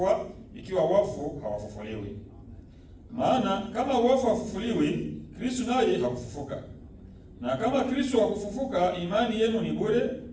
ikiwa wafu hawafufuliwi. Maana kama wafu hawafufuliwi, Kristo naye hakufufuka. Na kama Kristo hakufufuka, imani yenu ni bure,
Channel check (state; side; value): identical; both; correlation 1.00